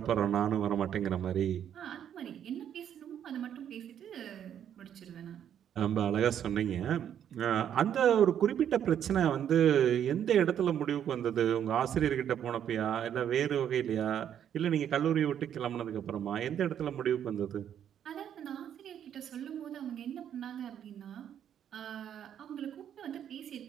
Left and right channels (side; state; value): left; quieter; 9.5 dB